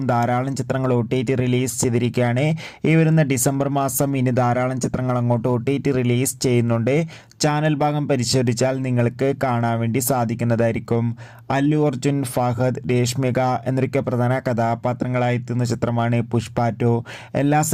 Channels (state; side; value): identical; both; correlation 1.00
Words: ധാരാളം ചിത്രങ്ങൾ OTT റിലീസ് ചെയ്തിരിക്കുകയാണ്. ഈ വരുന്ന ഡിസംബർ മാസം ഇനി ധാരാളം ചിത്രങ്ങൾ അങ്ങോട്ട് OTT റിലീസ് ചെയ്യുന്നുണ്ട്. ചാനൽ ഭാഗം പരിശോധിച്ചാൽ നിങ്ങൾക്ക് കാണാൻ വേണ്ടി സാധിക്കുന്നതായിരിക്കും. അല്ലു അർജുൻ, ഫഹദ്, രേഷ്മിക എന്നൊക്കെ പ്രധാന കഥാപാത്രങ്ങളായി എത്തുന്ന ചിത്രമാണ് പുഷ്പ 2. എല്ലാ